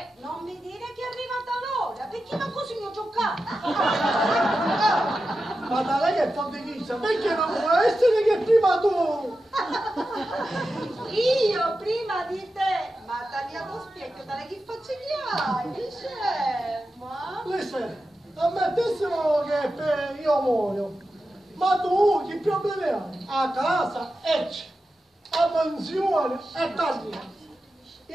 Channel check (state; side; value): normal; both; correlation 0.91